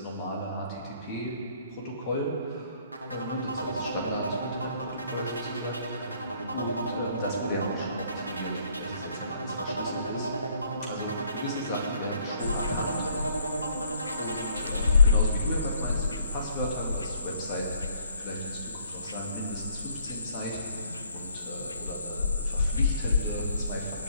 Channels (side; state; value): both; inverted; correlation -0.63